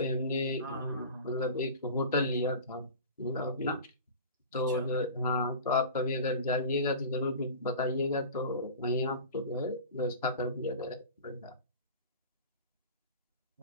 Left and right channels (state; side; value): inverted; both; correlation -0.36